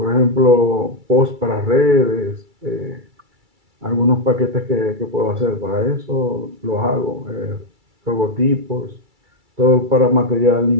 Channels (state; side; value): late; left; 2.3 ms